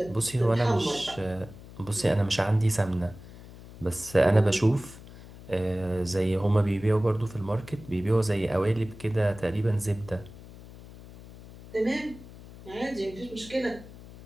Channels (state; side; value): noise; left; hum, 18 dB below the sound